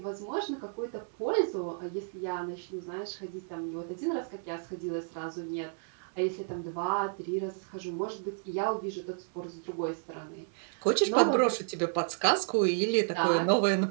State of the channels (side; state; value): left; silent; 57 dB below the other